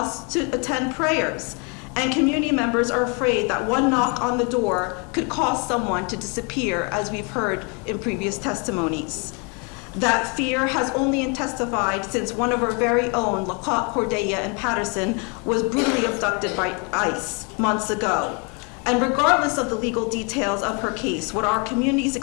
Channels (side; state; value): right; quieter; 34.2 dB